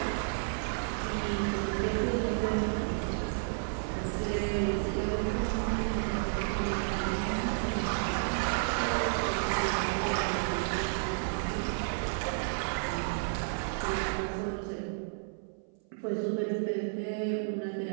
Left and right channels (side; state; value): left; silent; 57 dB below the other